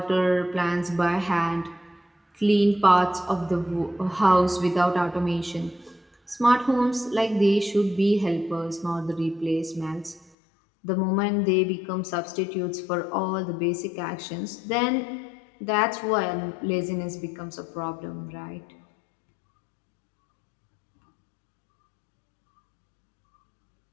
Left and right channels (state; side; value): drops out; right; at 10.3 s